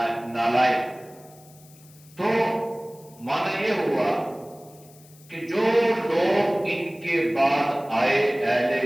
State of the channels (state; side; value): noise; left; hiss, 25 dB below the sound